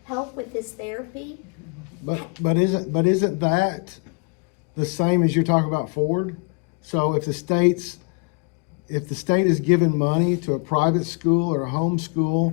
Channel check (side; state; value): right; quieter; 33.7 dB